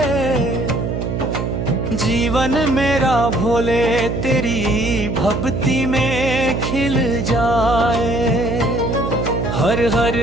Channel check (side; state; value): right; noise; hum, 2 dB below the sound